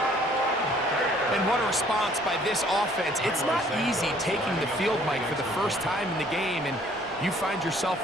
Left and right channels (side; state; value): both; normal; correlation 0.59